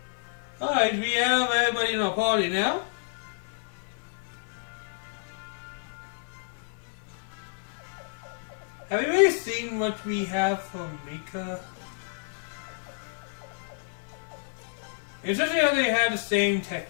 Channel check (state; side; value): silent; right; 56 dB below the other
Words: Alright, we have everybody in our party now. Have you really seen what we have from Mika? It's just how they have the same